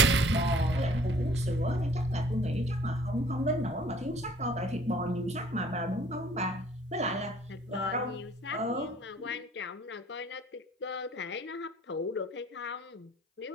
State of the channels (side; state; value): both; normal; correlation 0.55